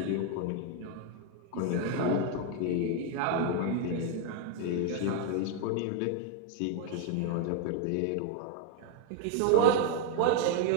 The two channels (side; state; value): both; different; correlation 0.01